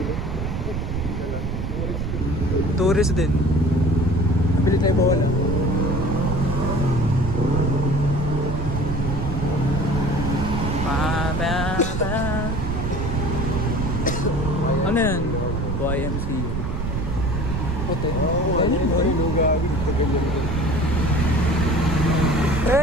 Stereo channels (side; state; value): right; noise; rumble, 3 dB below the sound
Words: Tourist din. Nabili tayo bawala. Ano yan? YMCA. Puto. Ano yung lugawin? Tagal yan.